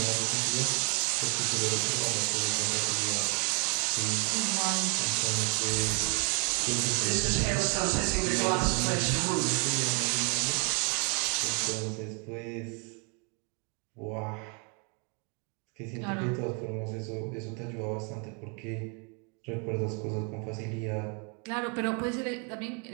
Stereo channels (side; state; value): left; quieter; 34.5 dB